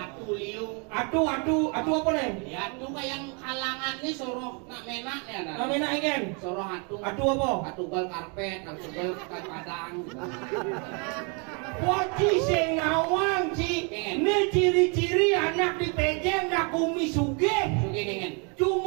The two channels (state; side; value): quieter; left; 35.1 dB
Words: liu. Atu apa nih? Ya atu kayak kalangan nih soro nak mena ya. Nak mena igen. Soro hatu. Atu apa? Atu gol karpet, atu gol padang. Waci sing ngawang ci. Ini ciri-ciri anak di pejeng nak kumi sugih. Sugih dengan.